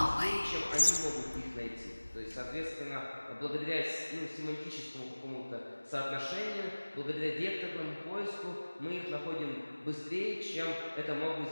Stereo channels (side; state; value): both; inverted; correlation -1.00